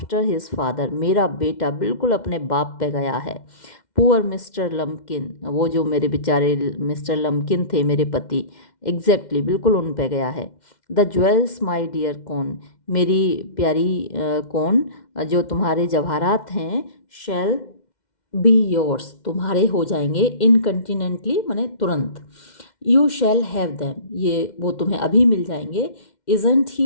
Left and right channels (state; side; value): late; right; 2.1 ms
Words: his father, मेरा बेटा बिल्कुल अपने बाप पे गया है। पुअर मिस्टर लम्किन, वो जो मेरे बेचारे मिस्टर लम्किन थे मेरे पति, एग्जैक्टली बिल्कुल उन पे गया है। द ज्वेल्स माई डियर कौन, मेरी प्यारी कौन, जो तुम्हारे जवाहरात हैं, शैल बी योर्स, तुम्हारे हो जाएंगे, इनकंटिनेंटली माने तुरंत, यू शैल हैव दैम, ये वो तुम्हें अभी मिल जाएंगे। Isn't